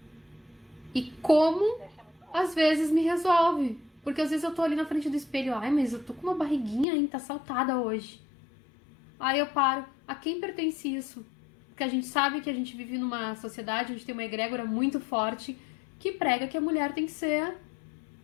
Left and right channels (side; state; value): right; drops out; at 6.9 s